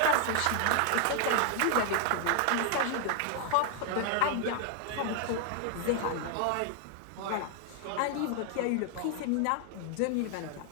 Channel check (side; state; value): both; different; correlation 0.00